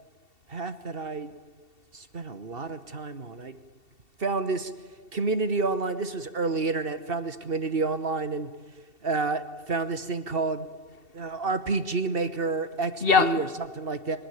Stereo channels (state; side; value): late; left; 2.7 ms